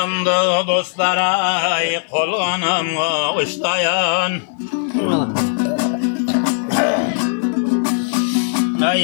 dostlara kolganımla uçlayan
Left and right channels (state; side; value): silent; right; 58 dB below the other